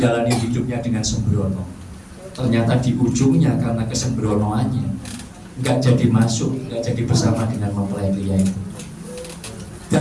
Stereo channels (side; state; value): both; identical; correlation 1.00